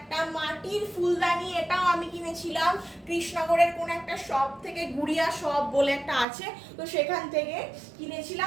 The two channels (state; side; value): drops out; left; at 6.2 s